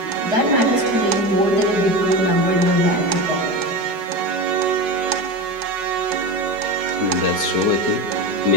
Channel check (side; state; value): left; late; 5.5 ms